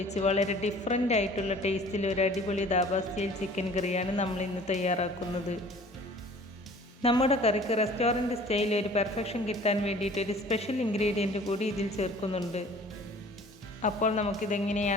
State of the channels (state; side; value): normal; both; correlation 0.49